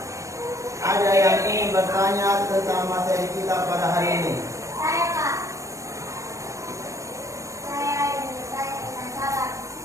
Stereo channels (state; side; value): late; left; 0.15 ms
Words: ada yang ingin bertanya tentang materi kita pada hari ini. Saya, Pak. Saya ingin bertanya tentang sabar.